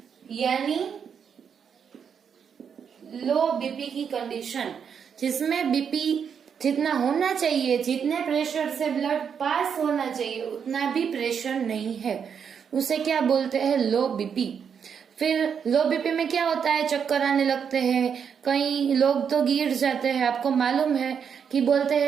यानी लो बीपी की कंडीशन, जिसमें बीपी जितना होना चाहिए, जितने प्रेशर से ब्लड पास होना चाहिए उतना भी प्रेशर नहीं है, उसे क्या बोलते हैं? लो बीपी। फिर लो बीपी में क्या होता है? चक्कर आने लगते हैं, कई लोग तो गिर जाते हैं। आपको मालूम है कि बोलते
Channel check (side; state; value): left; quieter; 7.2 dB